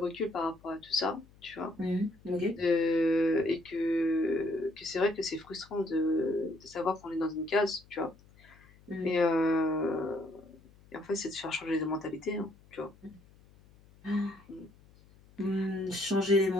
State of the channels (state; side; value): noise; left; hum, 26 dB below the sound